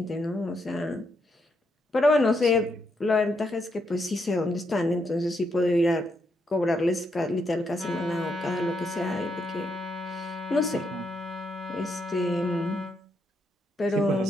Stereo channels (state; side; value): normal; both; correlation 0.79